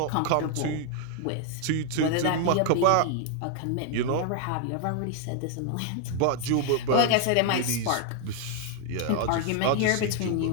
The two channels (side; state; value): both; different; correlation 0.00